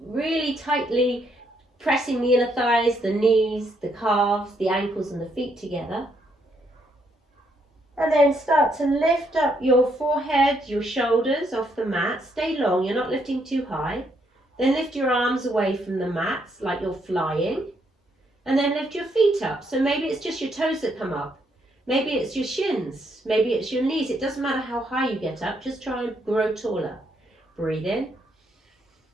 really tightly pressing the inner thighs, the knees, the calves, the ankles and the feet together. And then start to lift up your forehead, your shoulders off the mat. Stay long, you're not lifting too high. Then lift your arms away from the mat like you're flying. And then lift your feet up. So maybe it's just your toes that come up. Maybe it's your shins. Maybe it's your knees. It doesn't matter how high you get up. Just try and grow taller. Breathe in.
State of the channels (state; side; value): normal; both; correlation 0.74